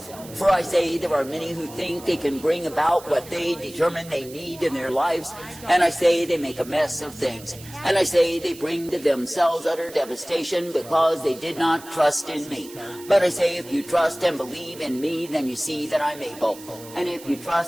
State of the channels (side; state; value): right; noise; hiss, 18 dB below the sound